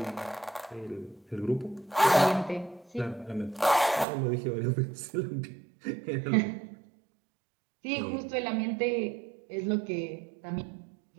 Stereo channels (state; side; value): drops out; left; at 4.0 s